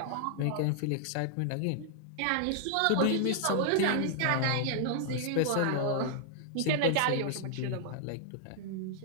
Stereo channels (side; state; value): both; different; correlation -0.01